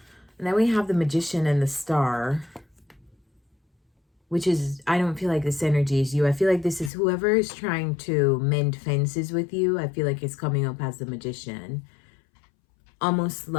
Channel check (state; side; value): drops out; right; at 6.9 s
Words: And then we have the Magician and the Star, which is, I don't feel like this energy is you. I feel like this is whoever is trying to mend fences with you. I feel like it's coming up as the Magician. Almost